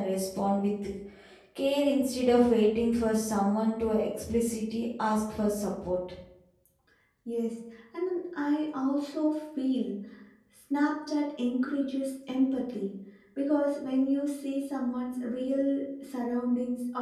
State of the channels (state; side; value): identical; both; correlation 1.00